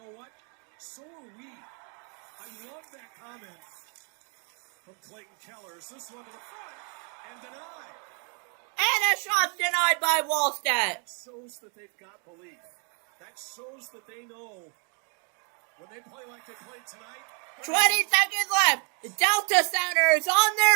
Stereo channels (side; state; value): left; quieter; 38.7 dB